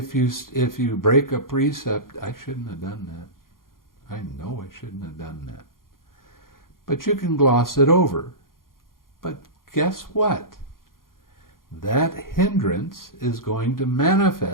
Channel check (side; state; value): right; late; 0.91 ms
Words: you break a precept, I shouldn't have done that. I know I shouldn't have done that. But you can gloss it over. But guess what? That hindrance is going to